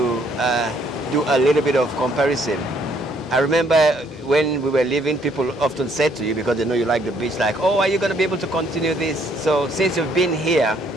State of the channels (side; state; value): both; normal; correlation 0.67